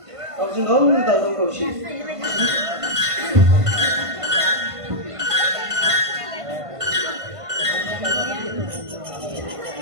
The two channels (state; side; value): late; left; 1.5 ms